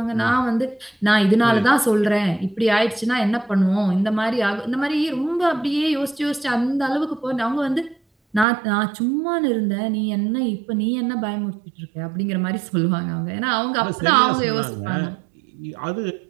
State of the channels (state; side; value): drops out; left; at 8.5 s